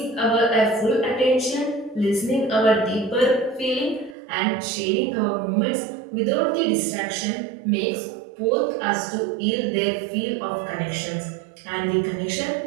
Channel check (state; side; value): drops out; left; at 4.2 s